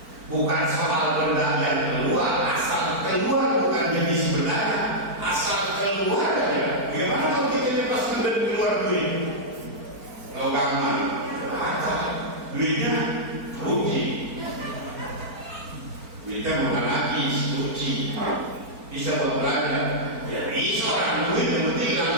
Bukan soal benda yang keluar, asal keluar bukan jenis benda, asal keluar aja. Bagaimana kalau kita pas keluar duit? Kalau gampang, duitnya rugi. Duitnya bukan lagi suci, bisa berbelanja. Ya bisa orang duit yang penting kan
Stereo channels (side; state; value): left; late; 4.4 ms